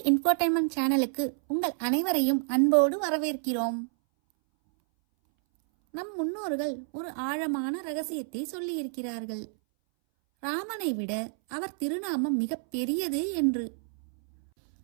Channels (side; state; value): left; silent; 59 dB below the other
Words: இன்ஃபோடெயின்மெண்ட் சேனலுக்கு உங்கள் அனைவரையும் அன்போடு வரவேற்கிறோம். நம் முன்னோர்கள் ஒரு ஆழமான ரகசியத்தை சொல்லியிருக்கிறார்கள். ராமனை விட அவர் திருநாமம் மிக பெரியது என்று.